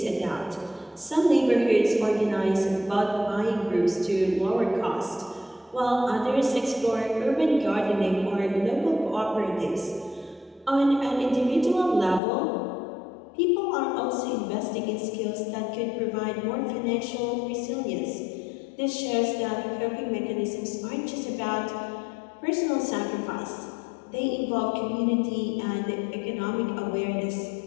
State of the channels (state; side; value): drops out; right; at 12.2 s